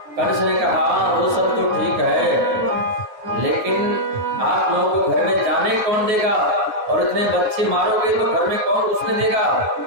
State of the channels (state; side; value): late; left; 9.4 ms